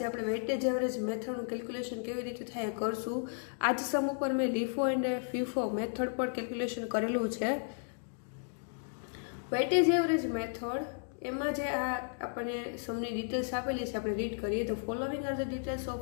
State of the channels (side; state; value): right; silent; digital silence